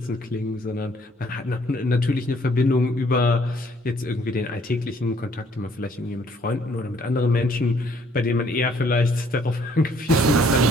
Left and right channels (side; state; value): both; normal; correlation 0.63